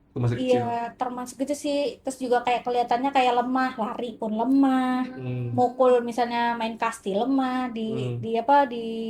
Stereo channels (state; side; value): identical; both; correlation 1.00